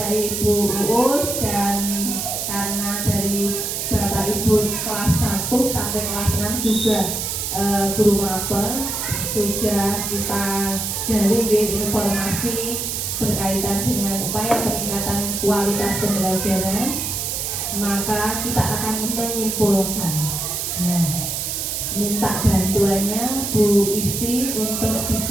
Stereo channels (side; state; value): right; noise; hiss, 2 dB below the sound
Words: Ibu Uus, dan karena dari Bapak Ibu kelas 1 sampai kelas 6 juga guru mapel sudah kita gali informasi berkaitan dengan upaya peningkatan kualitas pembelajaran, maka kita akan menyimpulkan. Minta bantuannya Bu Isti untuk